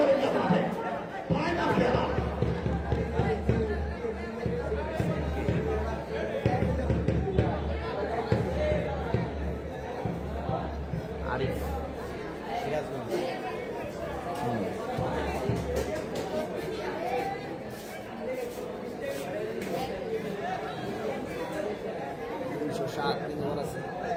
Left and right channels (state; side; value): identical; both; correlation 1.00